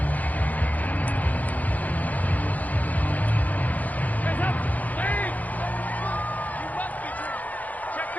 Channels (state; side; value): late; right; 0.079 ms